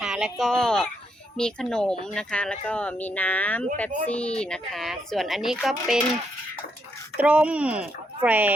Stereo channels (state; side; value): normal; both; correlation 0.77